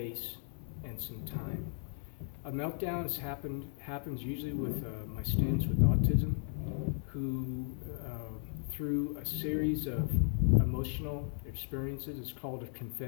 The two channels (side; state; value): right; silent; 54 dB below the other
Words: and some time. A meltdown happens usually with my students with autism, who through a series of emotional experiences, it's called a